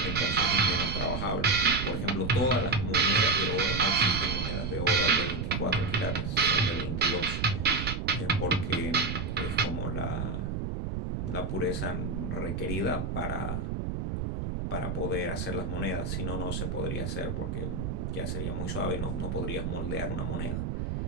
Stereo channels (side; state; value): right; noise; rumble, 3 dB below the sound